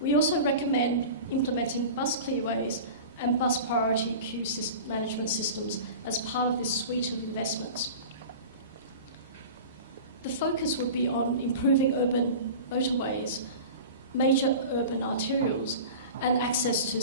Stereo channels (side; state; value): both; inverted; correlation -0.35